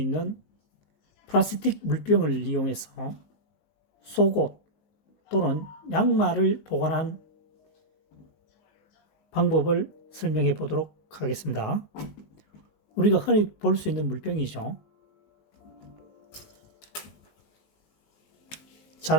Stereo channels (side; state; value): right; late; 19 ms